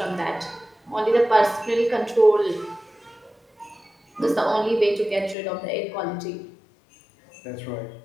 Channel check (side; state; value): right; drops out; at 5.4 s